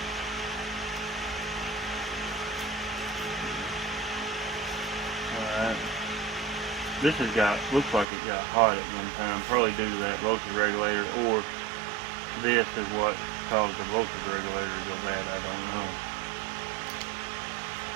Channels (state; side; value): drops out; left; at 8.1 s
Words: Alright. This has looks like it got hot at one time, probably due to that voltage regulator, or this is what caused the voltage regulator to go bad, I don't know.